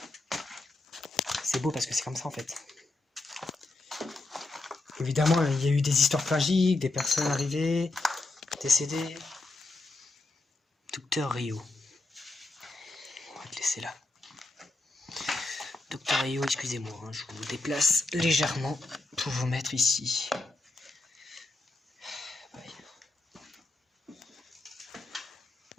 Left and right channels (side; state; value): right; quieter; 3.0 dB